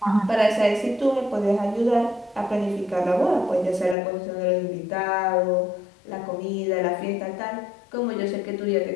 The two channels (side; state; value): right; drops out; at 4.0 s